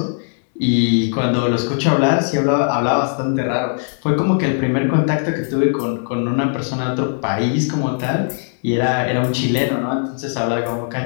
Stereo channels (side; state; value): right; silent; digital silence